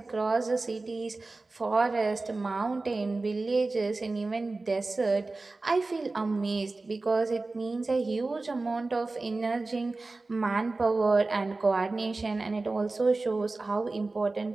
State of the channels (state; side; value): quieter; left; 3.4 dB